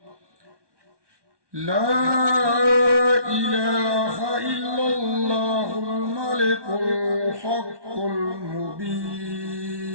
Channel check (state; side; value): late; left; 1.2 ms